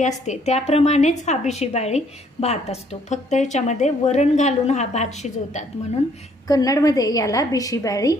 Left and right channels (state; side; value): normal; both; correlation 0.65